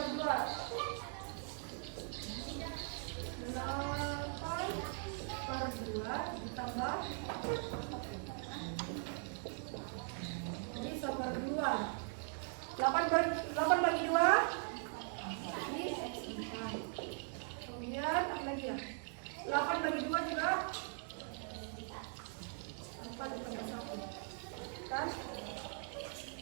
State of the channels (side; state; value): left; silent; 51 dB below the other